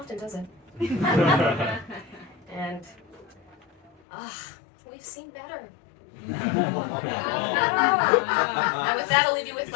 does it? And we've seen better. And with that, I'll leave you with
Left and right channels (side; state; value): right; drops out; at 3.9 s